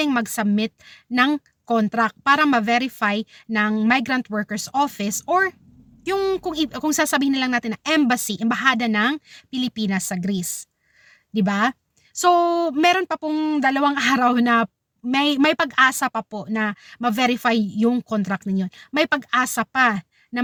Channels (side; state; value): both; identical; correlation 1.00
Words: mag-submit ng contract para ma-verify ng Migrant Workers Office or yung kung sasabihin na lang natin na embahada ng Pilipinas sa Greece, 'di ba? So meron pa pong 2 araw na may pag-asa pa po na ma-verify yung contract ninyo. May pag-asa pa na